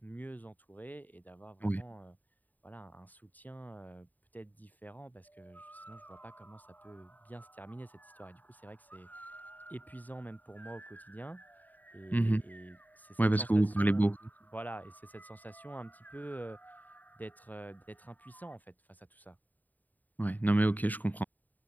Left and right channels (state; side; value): late; right; 0.084 ms